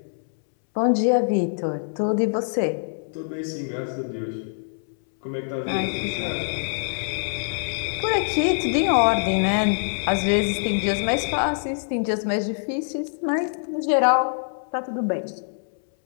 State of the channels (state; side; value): silent; right; 62 dB below the other